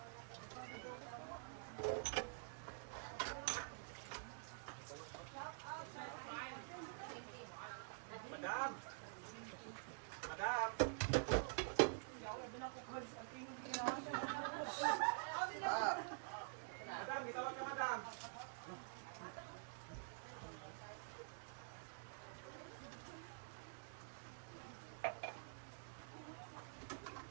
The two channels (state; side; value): silent; left; digital silence